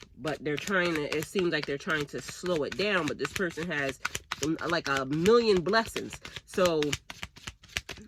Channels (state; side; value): identical; both; correlation 1.00